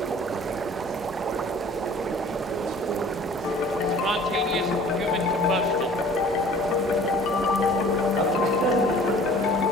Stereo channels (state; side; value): normal; both; correlation 0.49